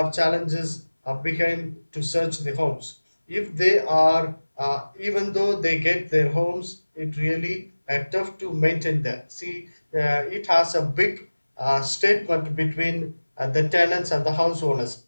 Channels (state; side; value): inverted; both; correlation -1.00